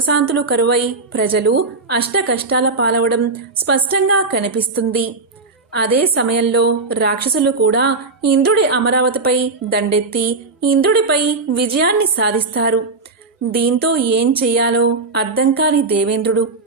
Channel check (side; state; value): left; quieter; 3.8 dB